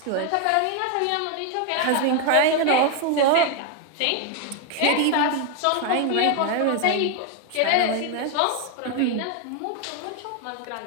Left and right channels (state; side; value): different; both; correlation 0.01